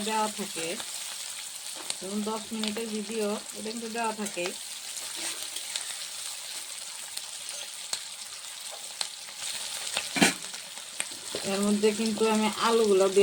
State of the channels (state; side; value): identical; both; correlation 1.00